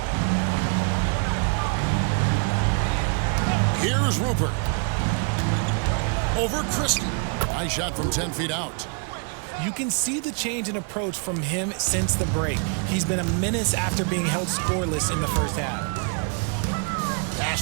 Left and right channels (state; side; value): quieter; left; 39.1 dB